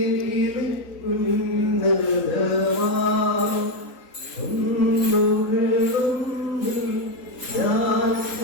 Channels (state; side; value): late; right; 4.1 ms